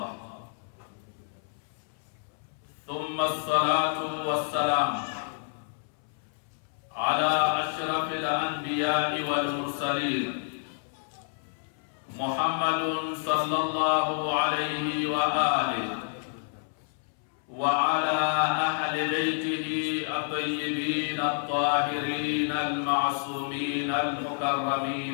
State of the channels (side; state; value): right; silent; 59 dB below the other